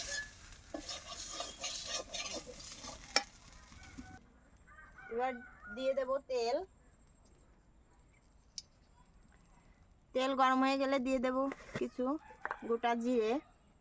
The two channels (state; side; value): identical; both; correlation 1.00